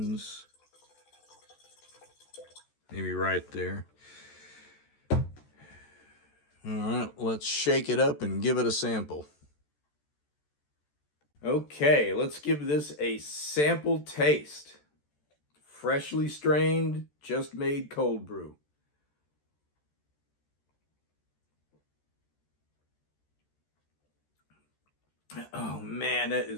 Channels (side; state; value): right; late; 14 ms